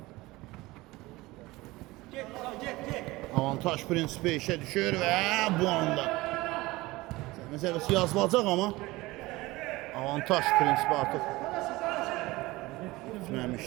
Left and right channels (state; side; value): quieter; left; 20.3 dB